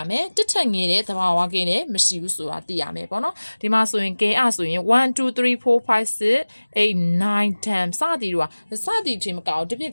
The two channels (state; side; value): inverted; both; correlation -1.00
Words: မယ်တစ်ထက်ငယ်တဲ့တဘာဝကိန်းလည်းမရှိဘူးဆိုတာသိရမယ်ပေါ့နော်ဒီမှာဆိုရင်ကဲဆိုရင်1 2 3 4 5 6 8 9 10စသည်တို့ကစသည်ချင်းမကောက်ဒီပြ